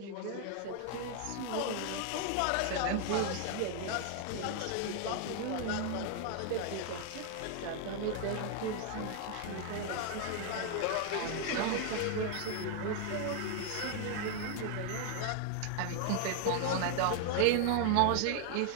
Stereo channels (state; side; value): different; both; correlation 0.00